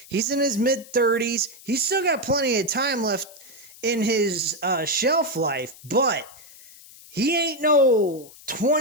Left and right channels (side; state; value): left; noise; hiss, 21 dB below the sound